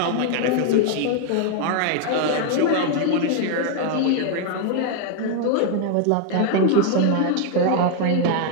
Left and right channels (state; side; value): different; both; correlation 0.00